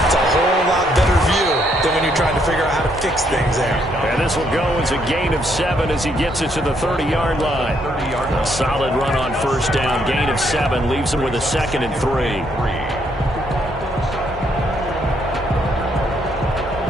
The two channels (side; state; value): both; normal; correlation 0.72